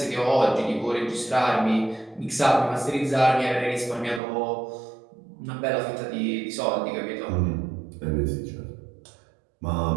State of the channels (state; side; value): drops out; left; at 4.2 s